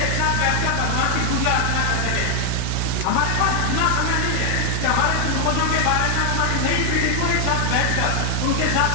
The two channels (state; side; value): different; both; correlation 0.00